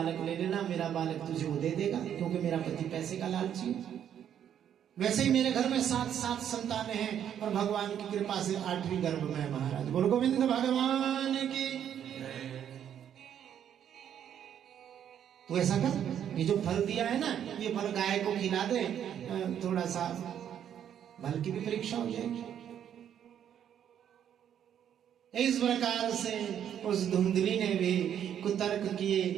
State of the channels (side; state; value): left; quieter; 9.5 dB